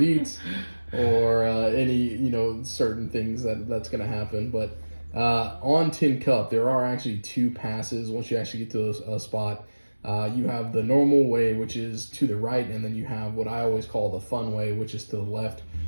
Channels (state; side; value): inverted; both; correlation -1.00